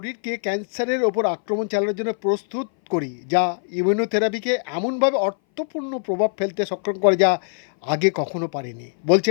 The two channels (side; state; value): right; silent; 59 dB below the other